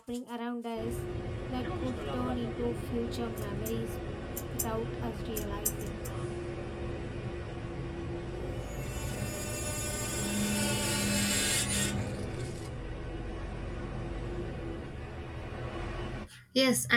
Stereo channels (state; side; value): identical; both; correlation 1.00